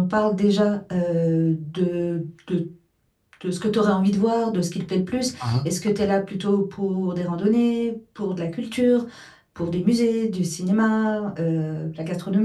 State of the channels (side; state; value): both; identical; correlation 1.00